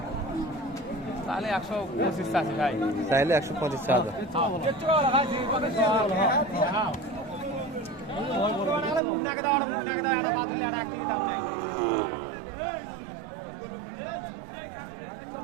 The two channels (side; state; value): left; drops out; at 9.0 s